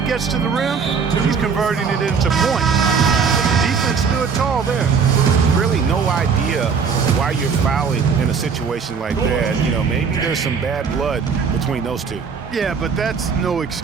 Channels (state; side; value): quieter; left; 5.9 dB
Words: gets to the rim, he's converting it into points. Defense stood tall there. Really no idea why you're fouling in a situation like that. You know, maybe there's some bad blood between those two. Yeah, but that's no